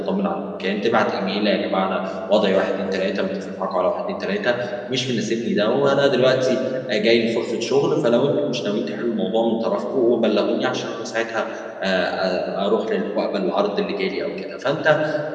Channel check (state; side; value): identical; both; correlation 1.00